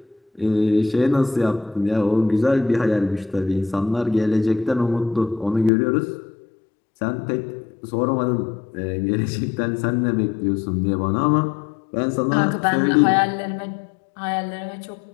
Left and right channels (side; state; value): right; drops out; at 5.7 s